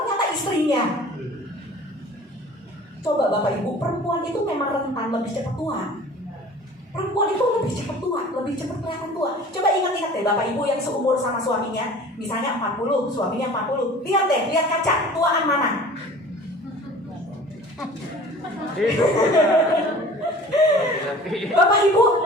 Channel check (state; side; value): normal; both; correlation 0.44